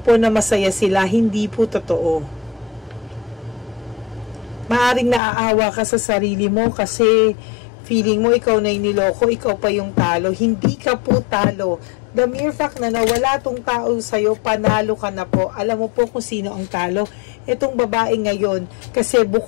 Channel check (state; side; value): drops out; right; at 5.2 s